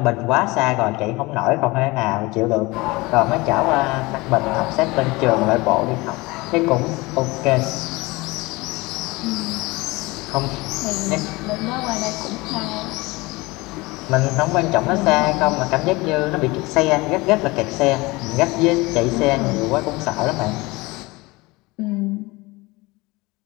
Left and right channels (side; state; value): right; quieter; 22.8 dB